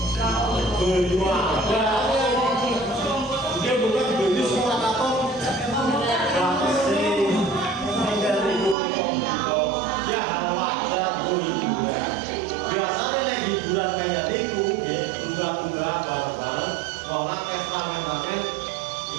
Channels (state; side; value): drops out; left; at 8.8 s